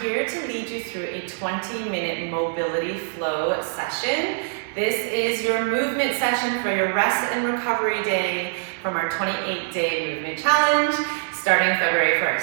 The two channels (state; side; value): silent; left; digital silence